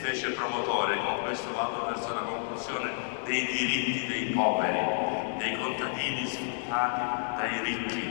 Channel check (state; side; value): silent; right; 58 dB below the other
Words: promotore, con questo vado verso la conclusione, dei diritti dei poveri, dei contadini sfruttati dai